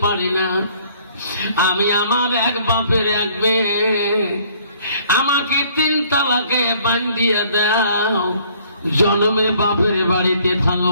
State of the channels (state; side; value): inverted; both; correlation -0.59